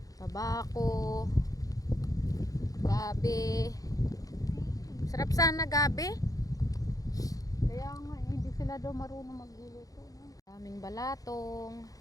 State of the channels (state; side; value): late; right; 0.17 ms